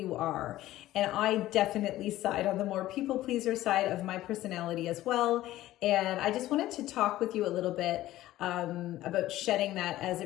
are. And I definitely side on the more people pleaser side of my personality as well. And I just wanted to talk with you a little bit about shedding that, as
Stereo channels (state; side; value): quieter; right; 15.2 dB